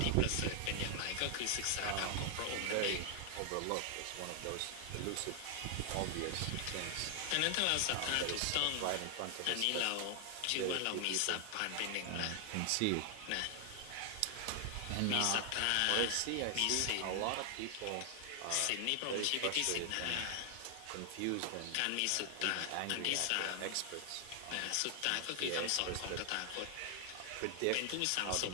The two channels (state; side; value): different; both; correlation 0.00